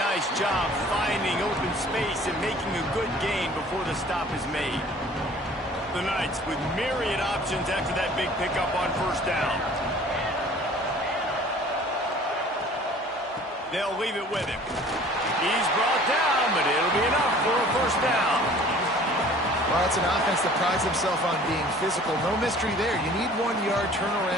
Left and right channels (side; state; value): both; normal; correlation 0.50